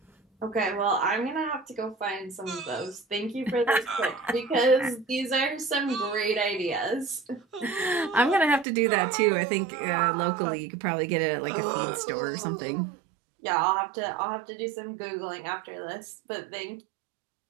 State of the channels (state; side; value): drops out; left; at 8.7 s